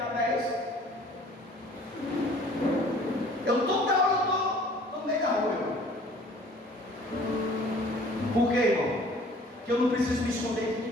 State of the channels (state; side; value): normal; both; correlation 0.51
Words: é esse? Eu toda hora estou no meio da rua, irmão. Por quê, irmão? Que eu não preciso me esconder de